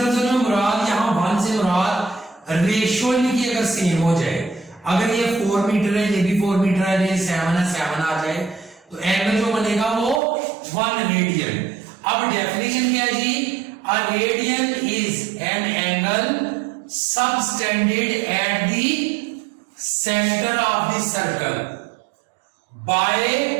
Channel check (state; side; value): drops out; left; at 10.2 s